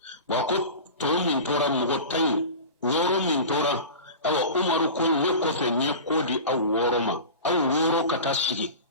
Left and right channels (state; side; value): inverted; both; correlation -0.32